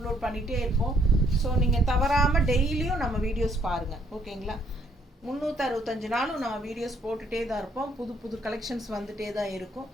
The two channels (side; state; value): both; normal; correlation 0.68